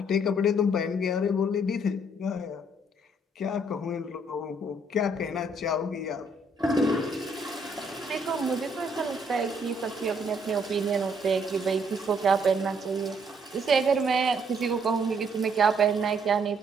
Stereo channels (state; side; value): normal; both; correlation 0.68